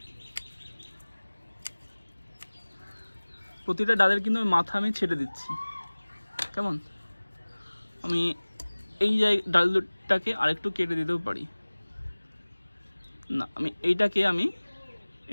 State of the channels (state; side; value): inverted; both; correlation -1.00